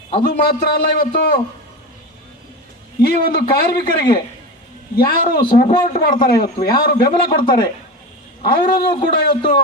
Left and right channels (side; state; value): both; normal; correlation 0.24